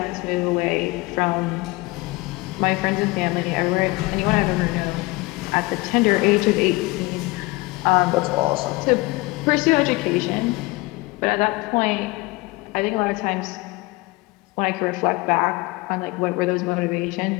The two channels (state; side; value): quieter; right; 22.9 dB